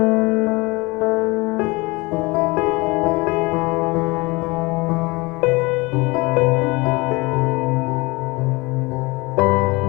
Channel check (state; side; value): quieter; right; 24.8 dB